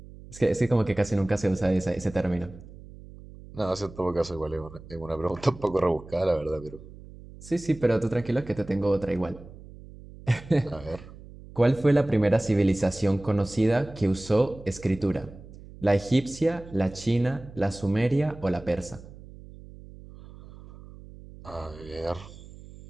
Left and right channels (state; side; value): noise; right; hum, 18 dB below the sound